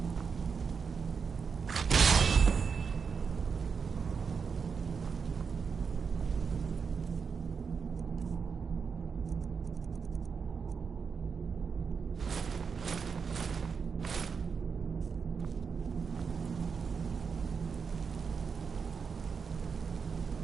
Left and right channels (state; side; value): quieter; left; 5.8 dB